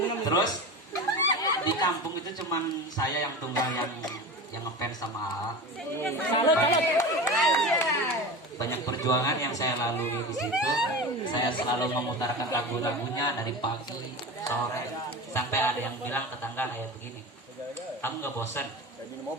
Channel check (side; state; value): both; normal; correlation 0.29